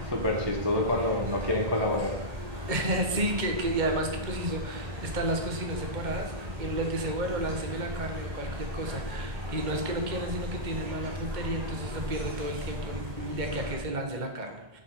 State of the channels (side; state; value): left; late; 2.1 ms